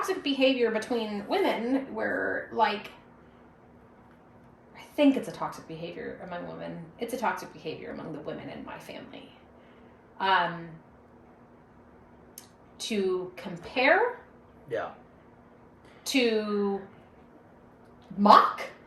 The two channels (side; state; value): both; identical; correlation 1.00